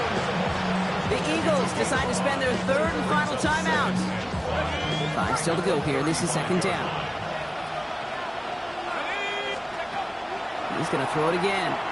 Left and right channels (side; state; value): both; identical; correlation 1.00